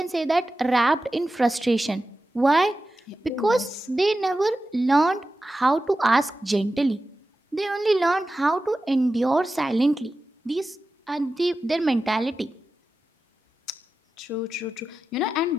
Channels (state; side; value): normal; both; correlation 0.93